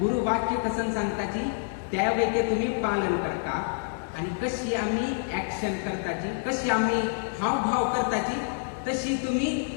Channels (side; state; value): right; silent; digital silence